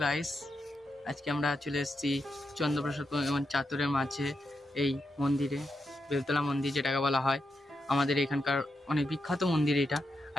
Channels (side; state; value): both; normal; correlation 0.85